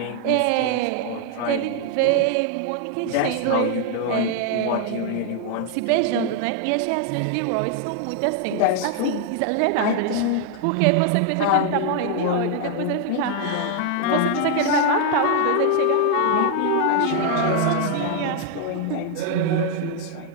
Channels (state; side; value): different; both; correlation 0.00